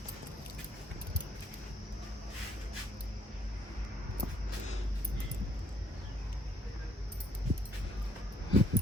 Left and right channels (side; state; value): both; normal; correlation 0.65